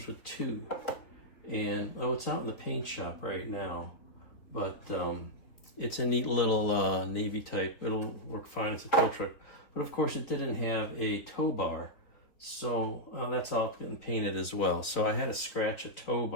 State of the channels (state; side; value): late; right; 3.7 ms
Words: with two. And it's out in the paint shop right now, but it's a neat little Navy type. It'll work fine as a tow truck, but of course it didn't have a tow bar. So that's all getting painted as well. So I had to scratch a tow